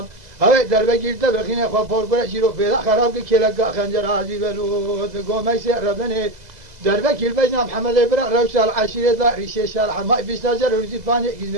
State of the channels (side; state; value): left; late; 2.0 ms